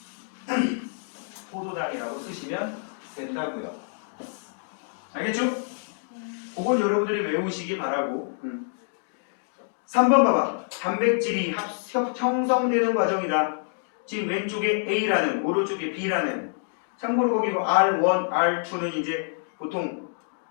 포도당이라고 쓰시면 된다고요. 알겠죠? 그건 여러분들이 외우시기 바라고. 3번 봐봐. 단백질이 형성되는 과정이다. 지금 왼쪽에 A라는, 오른쪽에 B라는. 참고로 거기 R1, R2는 이제 보통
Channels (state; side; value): silent; right; digital silence